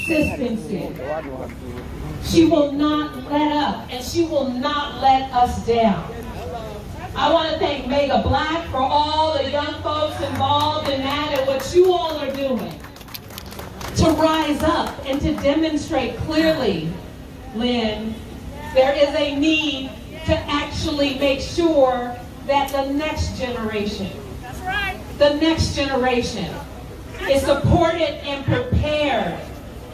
She will not let up, and she will not let us down. I want to thank Mega Black for all the young folks involved in that and what you all are doing to rise up and to demonstrate clearly, Lynn, there is a need to actually make sure that the next generation, the next generation is supported and prepared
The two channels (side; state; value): both; identical; correlation 1.00